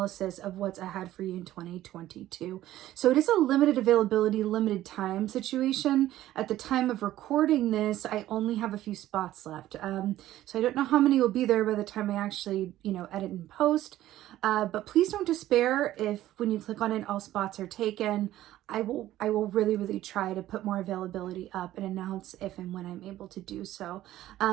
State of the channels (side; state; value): left; quieter; 14.1 dB